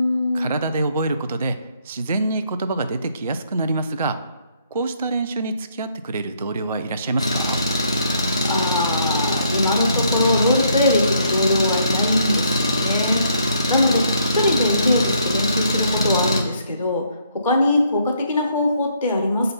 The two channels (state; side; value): inverted; both; correlation -0.69